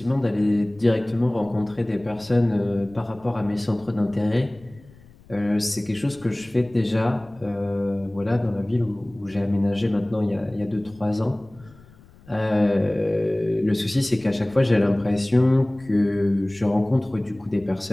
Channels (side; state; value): left; noise; rumble, 25 dB below the sound